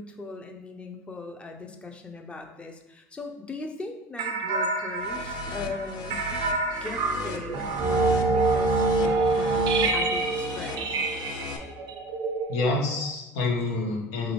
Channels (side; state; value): both; normal; correlation 0.36